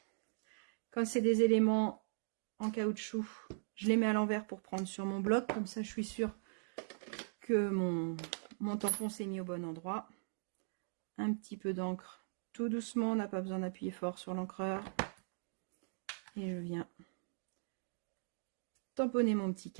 Quand c'est des éléments en caoutchouc, je les mets à l'envers pour prendre sur mon bloc. Comme ça, je suis sûre que mon tampon s'est mis au bon endroit. Un petit peu d'encre tout doucement, on n'a pas besoin d'appuyer fort sur l'encreur. Et je viens tamponner mon petit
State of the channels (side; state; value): left; silent; digital silence